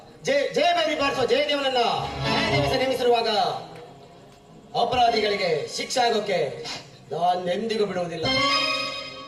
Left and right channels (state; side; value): identical; both; correlation 1.00